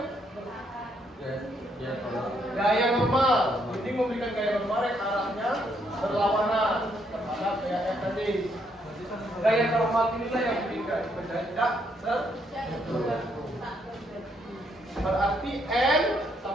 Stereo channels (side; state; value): both; normal; correlation 0.73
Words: Gaya normal. Dinding memberikan gaya normal yang arahnya berlawanan terhadap gaya F tadi. Gaya normal inilah yang diberikan benda tidak berarti N